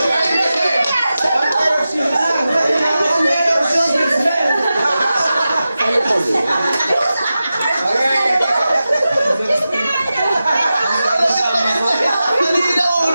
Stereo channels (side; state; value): both; inverted; correlation -0.93